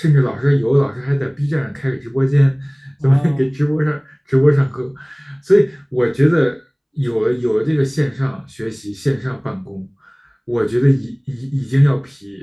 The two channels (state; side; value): identical; both; correlation 1.00